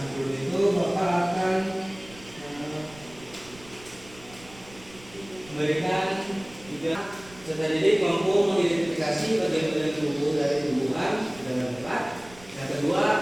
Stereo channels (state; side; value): noise; right; rumble, 21 dB below the sound